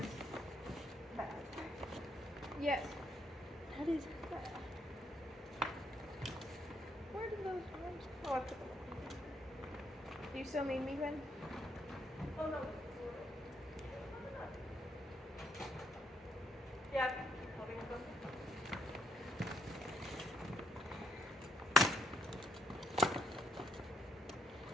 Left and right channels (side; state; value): both; normal; correlation 0.72